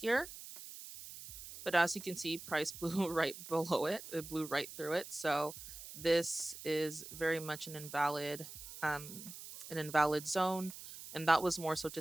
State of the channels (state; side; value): noise; right; hiss, 13 dB below the sound